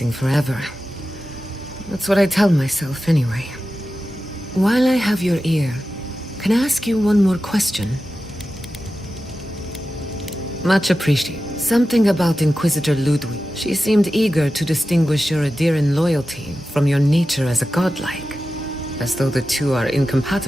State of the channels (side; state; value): both; normal; correlation 0.93